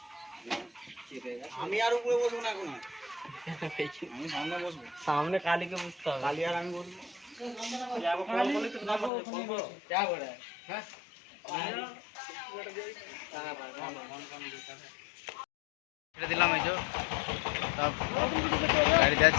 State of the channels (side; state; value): right; drops out; at 9.1 s